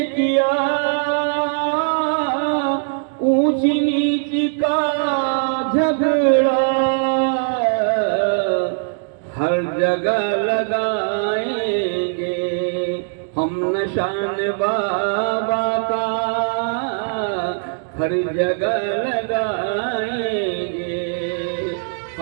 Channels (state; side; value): silent; left; digital silence